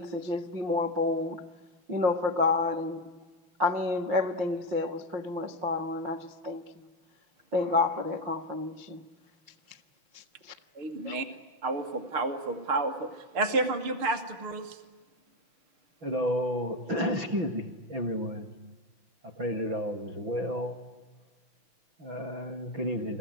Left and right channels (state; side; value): late; left; 6.6 ms